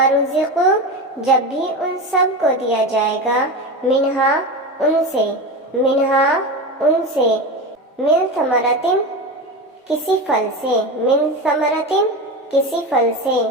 رزقوا جب بھی ان سب کو دیا جائے گا، منہا ان سے، منہا ان سے، من ثمرۃ کسی پھل سے، من ثمرۃ کسی پھل سے،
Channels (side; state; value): both; normal; correlation 0.23